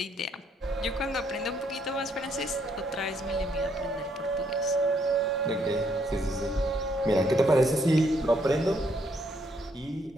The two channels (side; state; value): both; normal; correlation 0.71